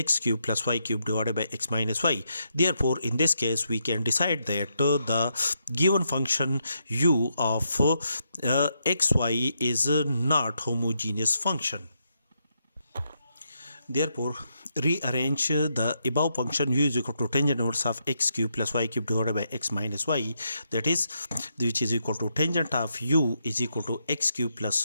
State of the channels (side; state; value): both; inverted; correlation -0.80